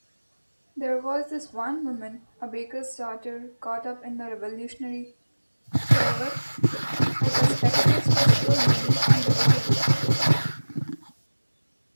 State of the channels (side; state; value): both; inverted; correlation -1.00